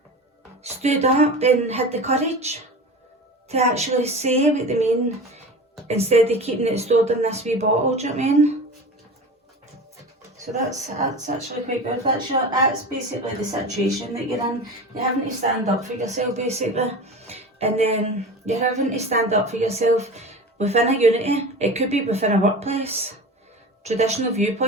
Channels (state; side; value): normal; both; correlation 0.32